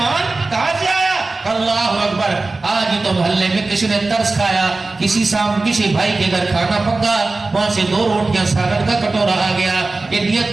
کہاں سے آیا؟ اللہ اکبر، آج ہی تو محلے میں کسی نے ترس کھایا، کسی بھائی کے گھر کھانا پکا، وہاں سے 2 روٹیاں سالن کا کٹورا آ گیا، یہ نیت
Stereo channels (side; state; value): left; quieter; 3.4 dB